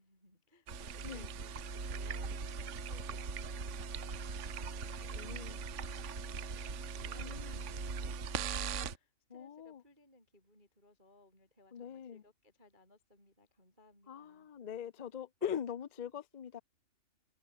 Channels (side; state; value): left; late; 3.4 ms